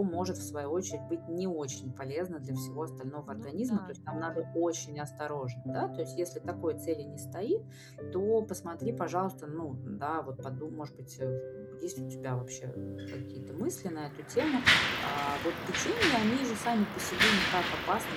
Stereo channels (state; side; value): identical; both; correlation 1.00